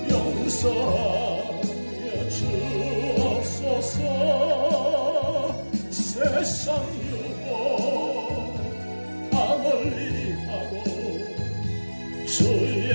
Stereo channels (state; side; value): inverted; both; correlation -1.00